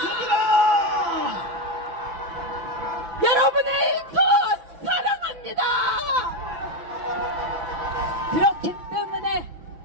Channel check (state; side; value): late; left; 6.0 ms